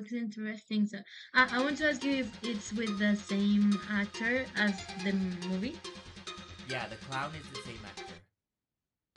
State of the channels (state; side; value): identical; both; correlation 1.00